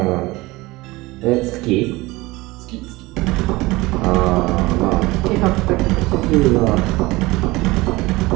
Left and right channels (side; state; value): left; quieter; 20.9 dB